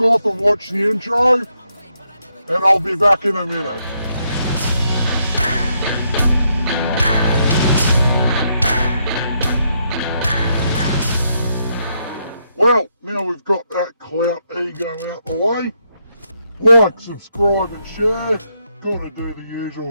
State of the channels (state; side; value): inverted; both; correlation -0.78